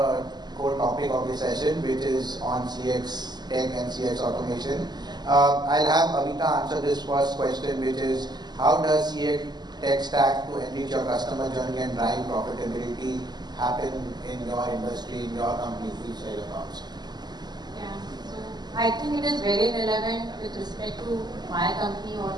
topic of the session, which is on CX tech and CX automation. I'll have Awita answer this first question, which is, how does CX tech stack to enrich your customer journey and drive profitability happen in your industry, in your company? Please share your thoughts. Yeah, so I think it is very relevant with respect to my company or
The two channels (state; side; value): late; left; 0.20 ms